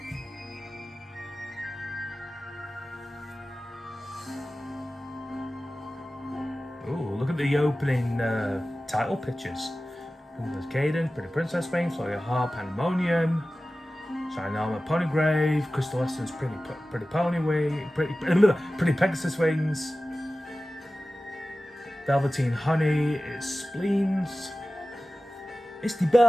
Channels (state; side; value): normal; both; correlation 0.96